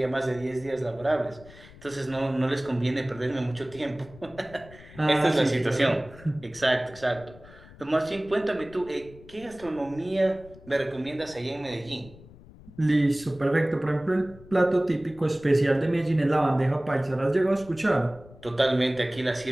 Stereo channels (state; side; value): noise; left; rumble, 21 dB below the sound